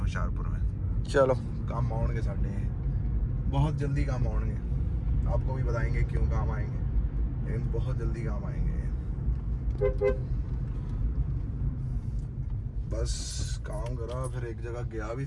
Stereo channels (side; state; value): both; identical; correlation 1.00